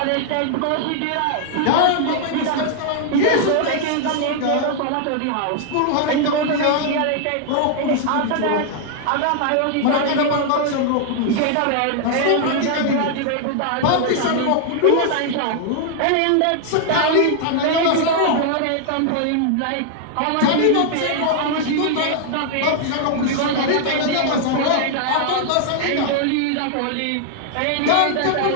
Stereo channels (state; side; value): different; both; correlation 0.00